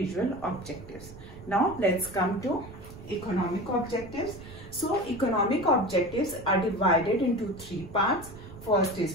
objectives. Now let's come to economic objectives. So economic objectives are divided into three parts. First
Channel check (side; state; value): right; noise; rumble, 16 dB below the sound